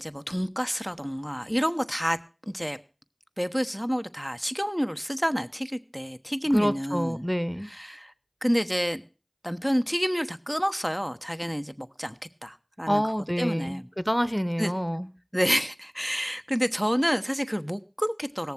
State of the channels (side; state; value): both; identical; correlation 1.00